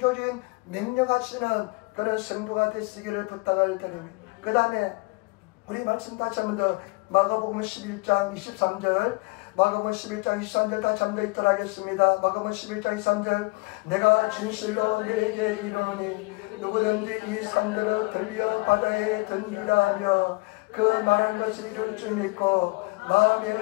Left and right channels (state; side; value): quieter; right; 27.4 dB